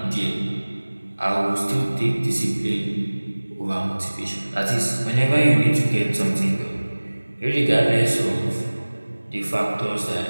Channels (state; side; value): inverted; both; correlation -1.00